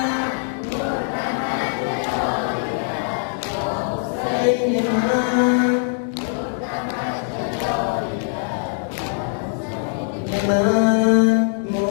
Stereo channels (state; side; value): silent; right; digital silence